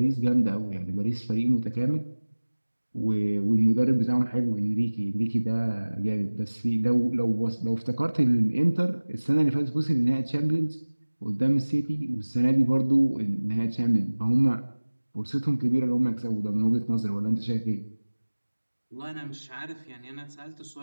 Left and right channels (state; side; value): inverted; both; correlation -1.00